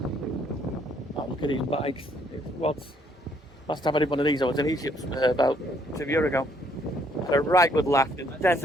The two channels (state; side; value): normal; both; correlation 0.67